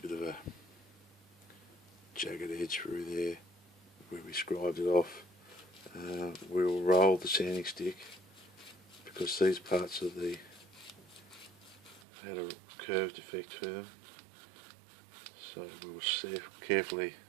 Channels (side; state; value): left; drops out; at 12.0 s